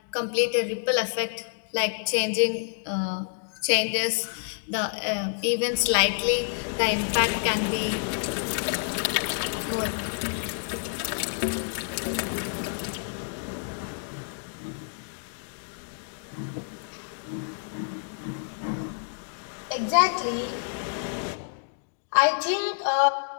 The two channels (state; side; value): silent; right; digital silence